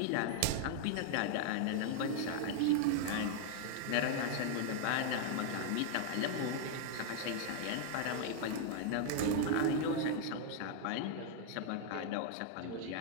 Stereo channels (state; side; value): different; both; correlation -0.01